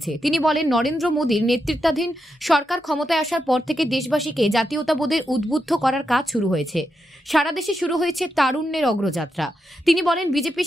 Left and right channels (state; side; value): normal; both; correlation 0.85